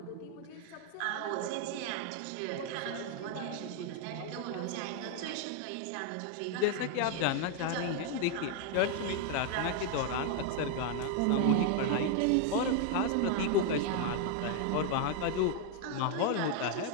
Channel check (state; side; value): different; both; correlation 0.00